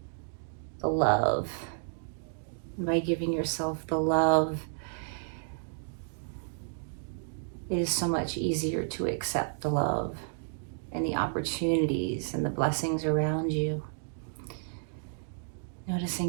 the love. And by giving yourself the love, it is so much easier to accept the love and the opportunities and the blessings around you.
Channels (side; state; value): left; silent; digital silence